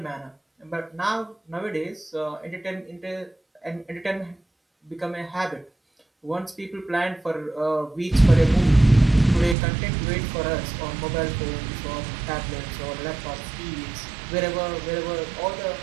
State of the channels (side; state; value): left; drops out; at 9.6 s